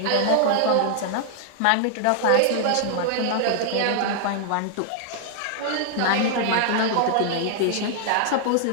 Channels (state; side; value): different; both; correlation -0.01